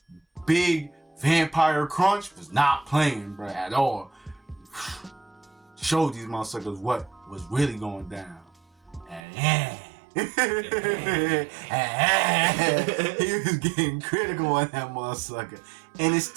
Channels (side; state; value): left; drops out; at 9.2 s